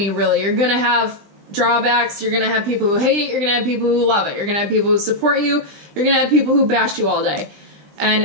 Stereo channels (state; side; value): late; left; 20 ms